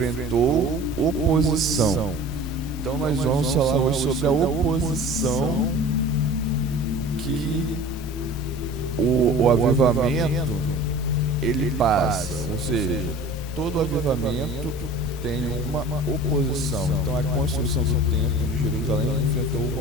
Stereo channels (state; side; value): normal; both; correlation 0.41